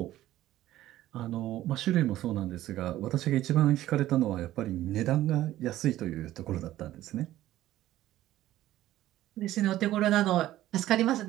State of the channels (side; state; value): left; quieter; 14.4 dB